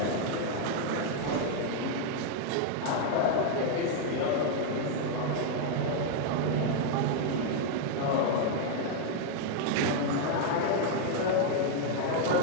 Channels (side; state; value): both; different; correlation 0.00